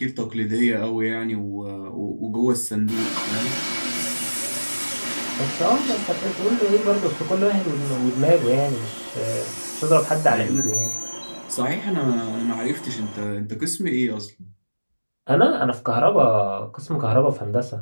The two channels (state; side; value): inverted; both; correlation -1.00